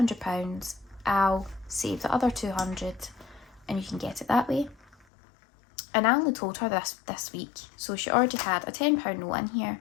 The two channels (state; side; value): drops out; right; at 5.1 s